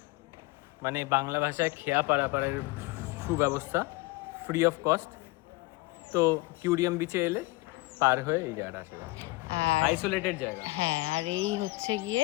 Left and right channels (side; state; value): right; quieter; 22.3 dB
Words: মানে বাংলা ভাষায় খেয়া পারাপারের সুব্যবস্থা, ফ্রি অফ কস্ট। তো কিউরিয়াম বিচে এলে পার হয়ে এই জায়গাটা আসা যাবে, আইসোলেটেড জায়গা। হ্যাঁ, আর এই হচ্ছে